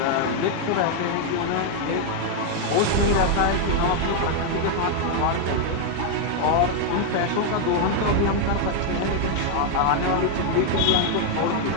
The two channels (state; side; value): different; both; correlation 0.00